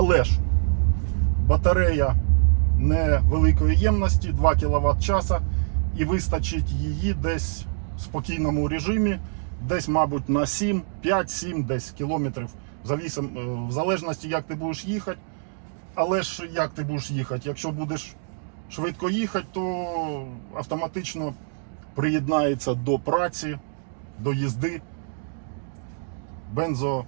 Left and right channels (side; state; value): left; silent; digital silence